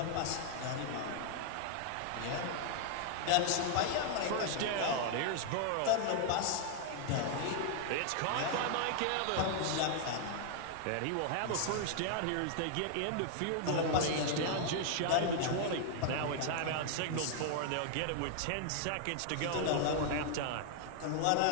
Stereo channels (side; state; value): both; different; correlation 0.00